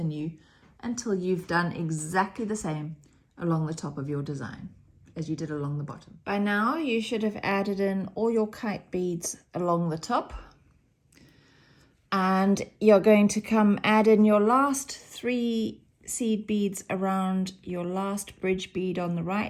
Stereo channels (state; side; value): identical; both; correlation 1.00